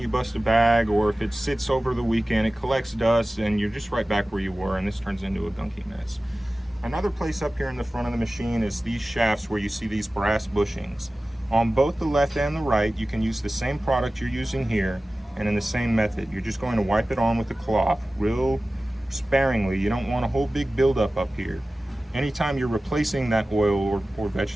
bust a bag, or if it sits over the weekend, it collects dust and you're just right back where you were, and this turns into a gunky mess. Another place up here in the front of the machine is these shafts where you see these brass bushings. On both the left and the right, you can use the same product you're using here and in the same method. You're just going to wipe it on with a cloth real sparingly. You don't want a whole big buildup up here. Anytime you're replacing that oil or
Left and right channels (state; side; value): normal; both; correlation 0.96